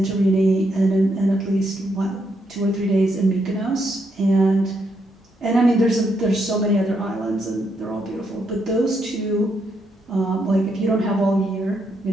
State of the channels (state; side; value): normal; both; correlation 0.78